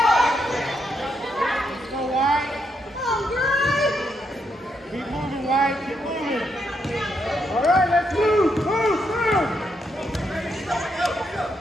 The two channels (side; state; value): both; normal; correlation 0.79